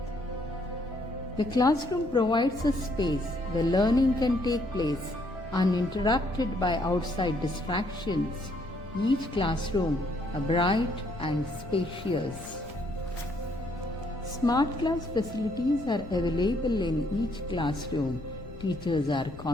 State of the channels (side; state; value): left; noise; rumble, 15 dB below the sound